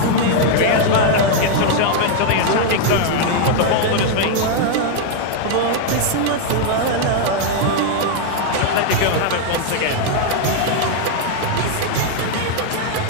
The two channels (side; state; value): both; different; correlation 0.00